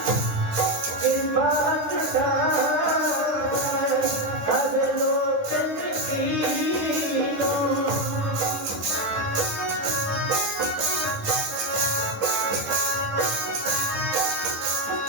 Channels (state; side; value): late; left; 10 ms